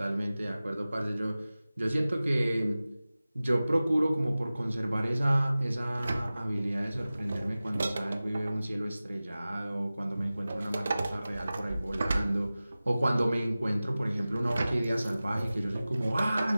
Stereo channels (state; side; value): inverted; both; correlation -0.97